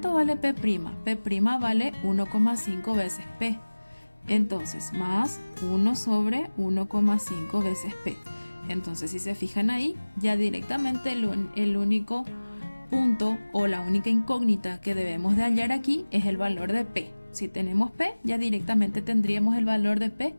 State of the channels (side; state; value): both; inverted; correlation -1.00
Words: vale P'? P' vale 1,5 veces P. Entonces, más 1 sobre 1,5 veces P. Entonces, si se fijan ahí, ya directamente el único punto o la única incógnita que debemos de hallar aquí es el valor de P. Si tenemos P, ya directamente tendríamos el valor de P'.